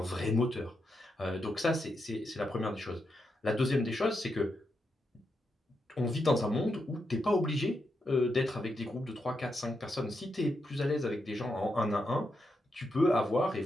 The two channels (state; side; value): normal; both; correlation 0.84